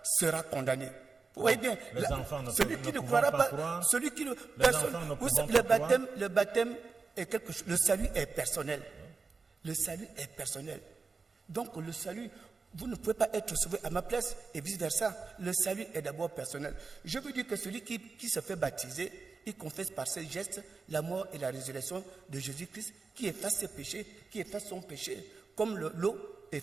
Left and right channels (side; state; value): left; quieter; 4.5 dB